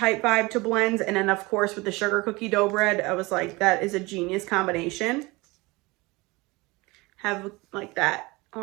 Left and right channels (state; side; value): quieter; left; 23.4 dB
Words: vibe to blends. And then of course with the sugar cookie dough bread, I was like, that is a genius combination. Have like that